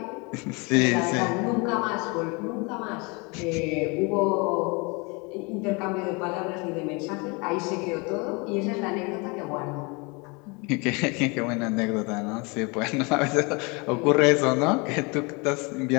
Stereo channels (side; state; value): right; quieter; 29.2 dB